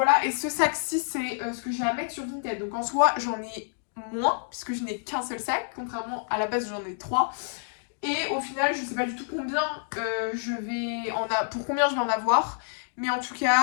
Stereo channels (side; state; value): right; silent; digital silence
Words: et ce sac-ci, c'est ce que j'ai à mettre sur Vinted. Donc en soi, j'en ai moins, puisque je n'ai qu'un seul sac, contrairement à la base, j'en ai 3. Et au final, je sais pas du tout combien pour combien je vais en avoir. Mais en tout